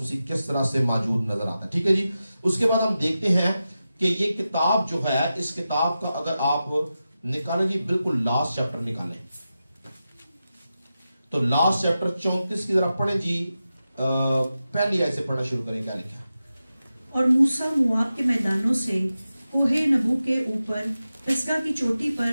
مسیح کس طرح سے موجود نظر آتا ہے. ٹھیک ہے جی. اس کے بعد ہم دیکھتے ہیں کہ یہ کتاب جو ہے، اس کتاب کا اگر آپ نکالیں جی، بالکل لاسٹ چیپٹر نکالیں تو لاسٹ چیپٹر 34 کی ذرا پڑھیں جی. پہلی آیت سے پڑھنا شروع کریں. کیا لکھا ہے؟ اور موسیٰ مواب کے میدانوں سے کوہ نبو کے اوپر پسگا کی چوٹی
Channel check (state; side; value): inverted; both; correlation -0.92